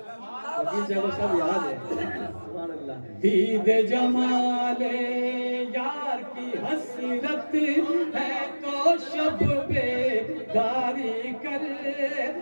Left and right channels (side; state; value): both; inverted; correlation -1.00